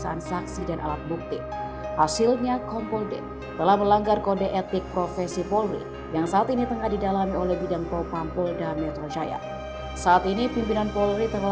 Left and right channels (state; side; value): identical; both; correlation 1.00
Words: saksi dan alat bukti. Hasilnya Kompol D telah melanggar kode etik profesi Polri yang saat ini tengah didalami oleh Bidang Propam Polda Metro Jaya. Saat ini pimpinan Polri